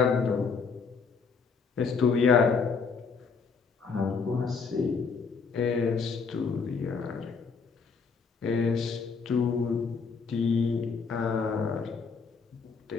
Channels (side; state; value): right; quieter; 5.2 dB